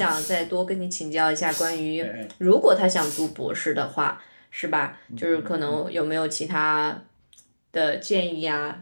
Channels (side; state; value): both; inverted; correlation -1.00